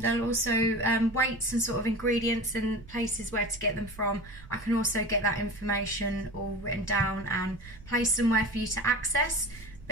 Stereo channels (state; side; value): noise; right; rumble, 18 dB below the sound